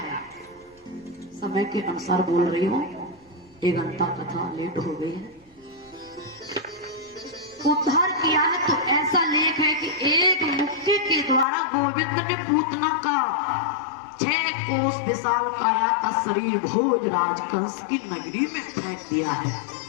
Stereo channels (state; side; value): drops out; right; at 11.5 s